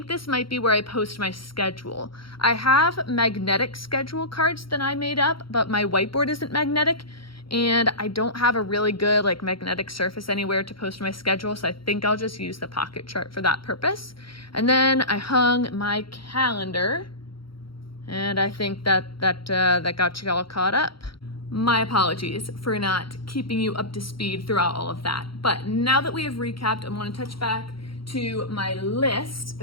this might be where I post my schedule. I have magnetic schedule cards that I made up, but my whiteboard isn't magnetic, and I don't have a really good like magnetic surface anywhere to post my schedule, so I think I'll just use the pocket chart for that purpose. And then I hung my calendar, and I think that got you all caught up. My apologies for not keeping you up to speed throughout all of that. But now that we have recapped, I want to touch back to my list.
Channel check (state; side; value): late; right; 0.74 ms